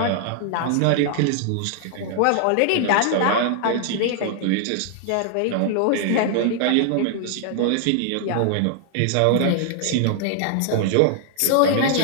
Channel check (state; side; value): different; both; correlation 0.00